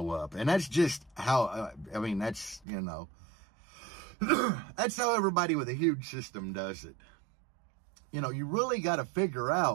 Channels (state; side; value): drops out; left; at 2.7 s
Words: up. And that's just how, I mean, that's, you know, that's how everybody with a huge system does it. You know, you really got to figure